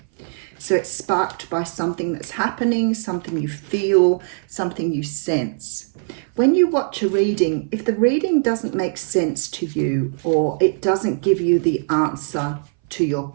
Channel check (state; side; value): silent; left; 60 dB below the other